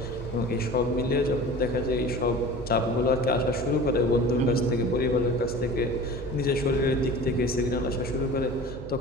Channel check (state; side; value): noise; right; hum, 10 dB below the sound